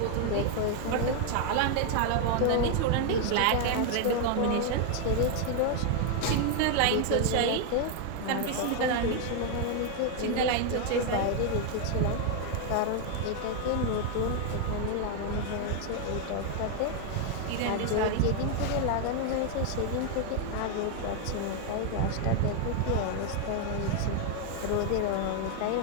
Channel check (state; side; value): different; both; correlation 0.00